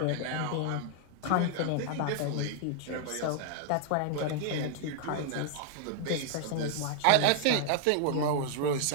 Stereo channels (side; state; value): both; different; correlation 0.00